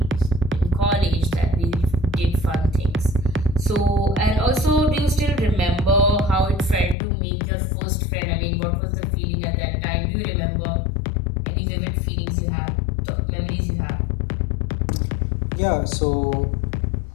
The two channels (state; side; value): drops out; right; at 7.0 s